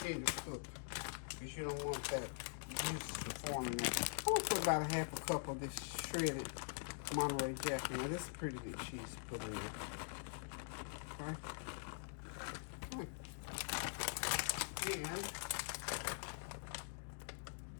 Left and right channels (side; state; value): right; silent; digital silence